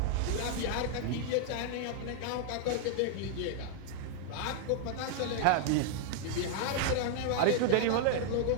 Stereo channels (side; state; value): both; different; correlation 0.00